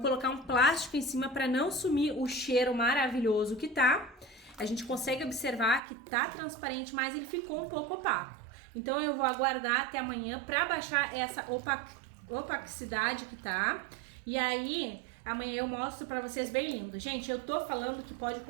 colocar um plástico em cima para não sumir o cheiro maravilhoso que tá. A gente consegue observar que tá transparente, mas ele ficou um pouco opaco. Então, eu vou aguardar até amanhã para baixar essa opacidade que tá. E aí, amanhã eu mostro pra vocês bem lindo. Gente, eu tô falando que pode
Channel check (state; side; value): drops out; left; at 5.8 s